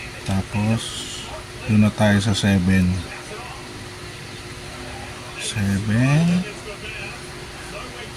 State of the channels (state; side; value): identical; both; correlation 1.00